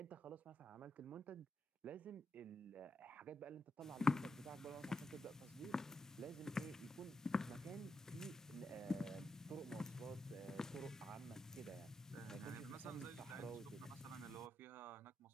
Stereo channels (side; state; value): both; normal; correlation 0.85